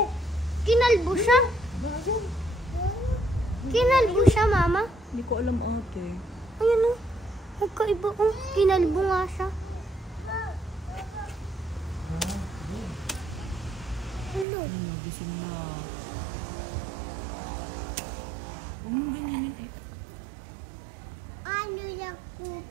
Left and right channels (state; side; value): drops out; left; at 14.5 s